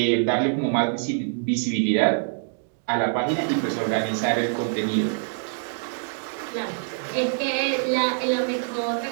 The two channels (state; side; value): silent; left; digital silence